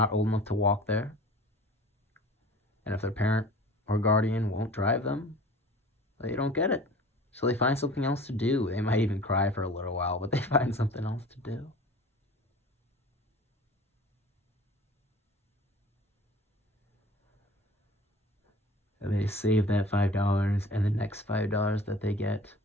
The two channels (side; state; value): both; normal; correlation 0.43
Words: old enough to walk there, and if their parent or guardian won't drive them, they don't get it. So they find something else to do. They might even cry for a little while, but they find something else to do. And they save that $5 and the next $5 that they get,